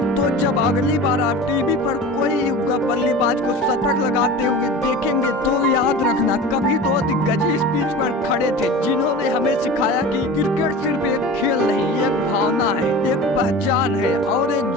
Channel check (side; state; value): both; normal; correlation 0.35